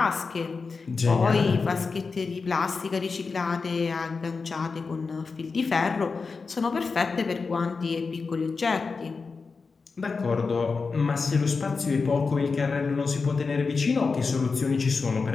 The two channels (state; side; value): quieter; right; 4.6 dB